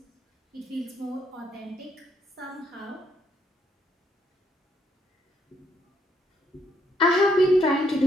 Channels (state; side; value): normal; both; correlation 0.73